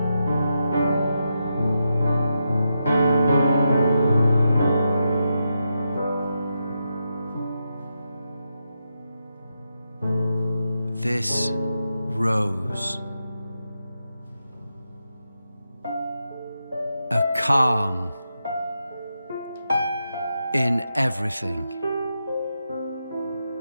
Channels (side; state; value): both; inverted; correlation -0.85